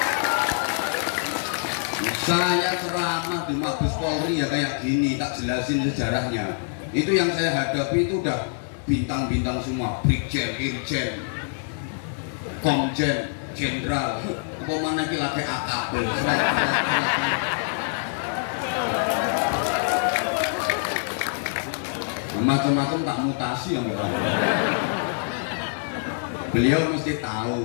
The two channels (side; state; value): right; silent; 62 dB below the other